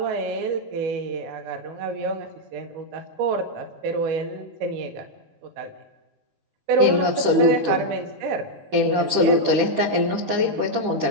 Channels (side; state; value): left; late; 10 ms